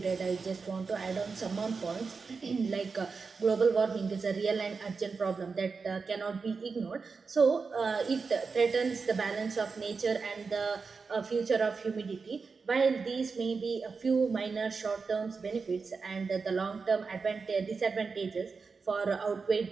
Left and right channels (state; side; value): quieter; left; 4.8 dB